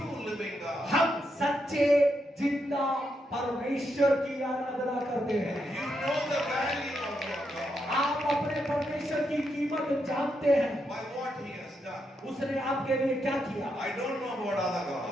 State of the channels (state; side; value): normal; both; correlation 0.81